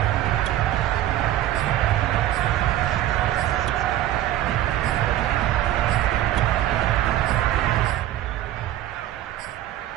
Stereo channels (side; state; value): left; quieter; 13.2 dB